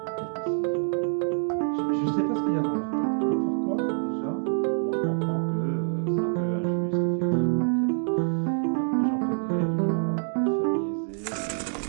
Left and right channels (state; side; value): silent; left; 59 dB below the other